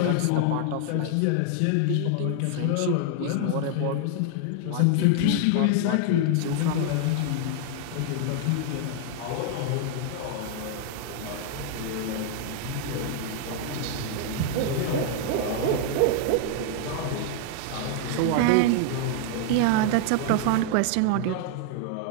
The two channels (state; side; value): different; both; correlation 0.00